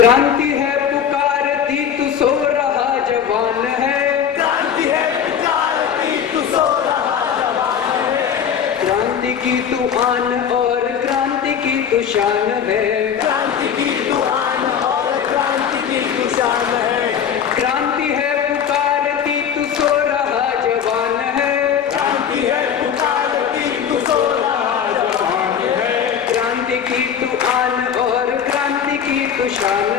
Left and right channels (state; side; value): quieter; right; 8.2 dB